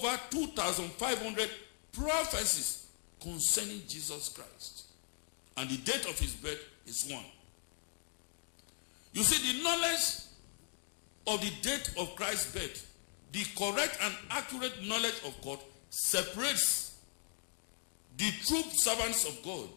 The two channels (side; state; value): right; silent; 52 dB below the other